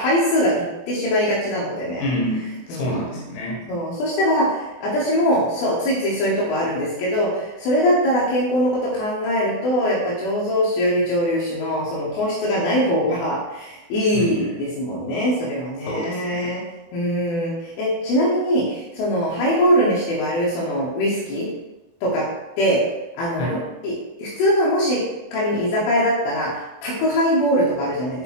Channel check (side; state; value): right; late; 24 ms